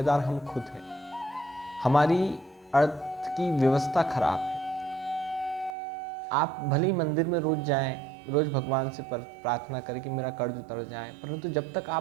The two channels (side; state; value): left; drops out; at 5.8 s